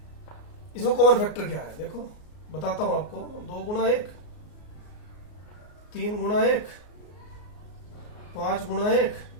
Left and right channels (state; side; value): late; right; 33 ms